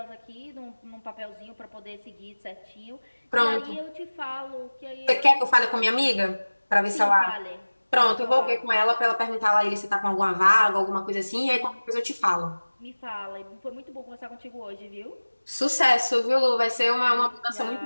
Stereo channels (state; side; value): inverted; both; correlation -1.00